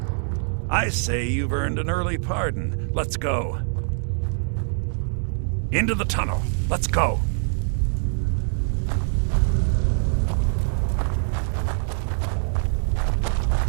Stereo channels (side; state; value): left; silent; 57 dB below the other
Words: I say you've earned an early pardon. Let's go. Into the tunnel. Let's go.